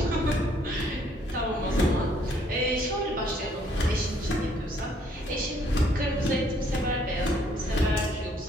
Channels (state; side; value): normal; both; correlation 0.65